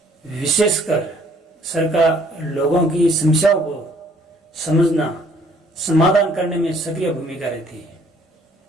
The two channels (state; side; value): normal; both; correlation 0.60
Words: विशेषकर सर का लोगों की समस्याओं को समझना, समाधान करने में सक्रिय भूमिका रहती है।